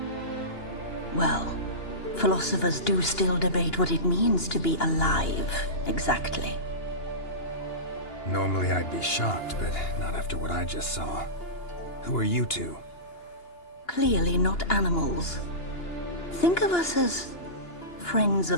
Well, philosophers do still debate what it means to be alive, exactly. Normally I'd be shocked, but not after what I just saw. Who are you two? Clearly not animals. Think of us as friends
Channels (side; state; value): right; late; 2.8 ms